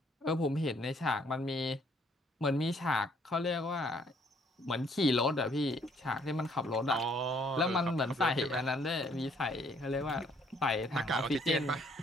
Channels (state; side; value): normal; both; correlation 0.65